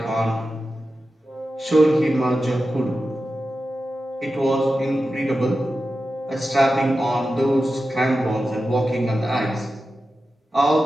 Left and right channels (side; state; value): both; normal; correlation 0.92